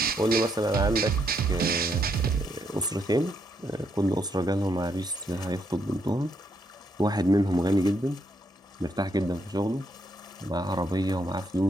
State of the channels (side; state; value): both; normal; correlation 0.76